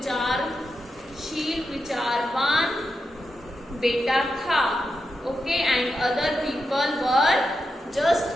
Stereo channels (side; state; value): both; normal; correlation 0.87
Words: विचारवान बेटा था. Okay and other people were just